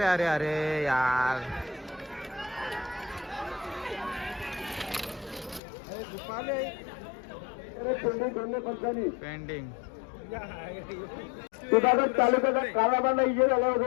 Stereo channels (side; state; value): right; drops out; at 5.6 s